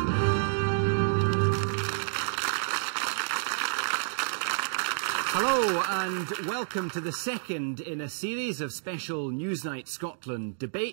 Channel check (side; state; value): left; silent; digital silence